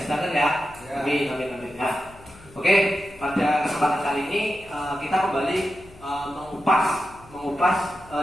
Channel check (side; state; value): left; noise; hum, 22 dB below the sound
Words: sedangkan ya. Amin ya. Oke, pada kesempatan kali ini kita kembali mengupas